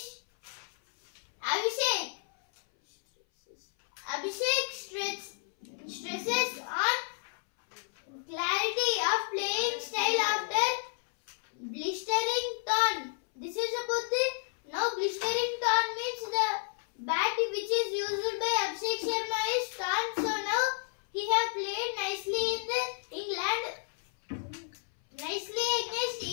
Abhishek stresses on clarity of playing style after blistering torn. This is about the now blistering torn means the bat which is used by Abhishek Sharma is torn. So now he have played nicely in the England, nicely against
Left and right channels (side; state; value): right; silent; 57 dB below the other